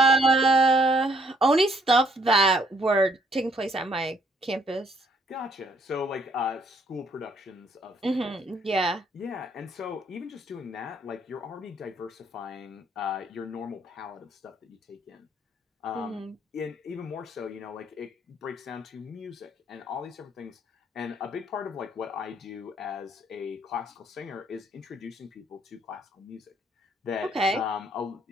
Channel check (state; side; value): normal; both; correlation 0.66